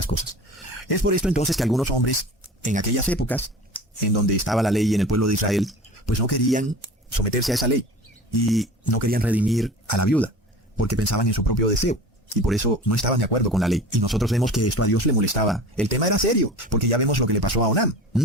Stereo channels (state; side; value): normal; both; correlation 0.38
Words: cosas. Es por esto entonces que algunos hombres, en aquellas épocas, en donde estaba la ley en el pueblo de Israel, pues no querían someterse a esa ley, y no querían redimir a la viuda, porque pensaban en su propio deseo. Y por eso no estaban de acuerdo con la ley. Y nosotros vemos que esto a Dios le molestaba. El tema era serio, porque ya vemos lo que le pasó a Onán,